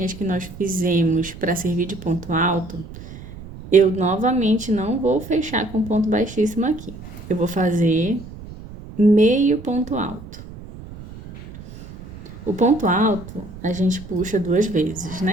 que nós fizemos para servir de ponto alto, eu novamente não vou fechar com ponto baixíssimo aqui. Eu vou fazer meio ponto alto. O ponto alto, a gente puxa 2 vezes,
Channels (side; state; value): right; noise; rumble, 15 dB below the sound